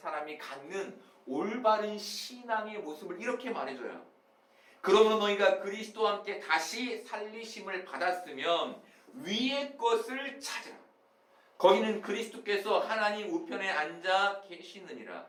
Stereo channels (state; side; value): identical; both; correlation 1.00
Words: 갖는 올바른 신앙의 모습을 이렇게 말해줘요. 그러므로 너희가 그리스도와 함께 다시 살리심을 받았으면 위의 것을 찾으라. 거기는 그리스도께서 하나님 우편에 앉아 계시느니라.